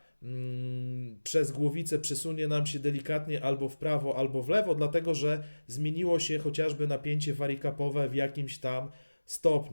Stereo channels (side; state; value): both; inverted; correlation -1.00